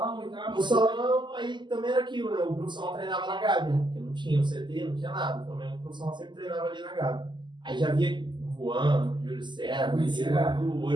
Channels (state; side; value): late; left; 0.22 ms